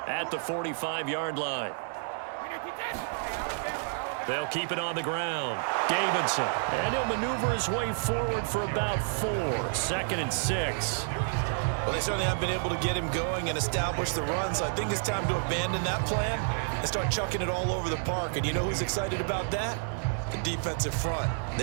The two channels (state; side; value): silent; left; digital silence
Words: at the 45-yard line. They'll keep it on the ground. Davidson, and he'll maneuver his way forward for about 4. 2nd and 6. Well, they certainly haven't been able to get him going and establish the run, so I think it's time to abandon that plan and start chucking it all over the park. And you know who's excited about that? The defensive front.